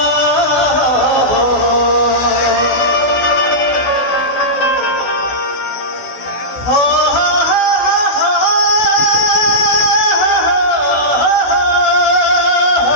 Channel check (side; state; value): right; late; 16 ms